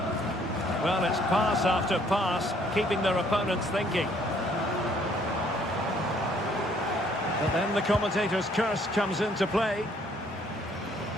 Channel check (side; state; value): both; normal; correlation 0.63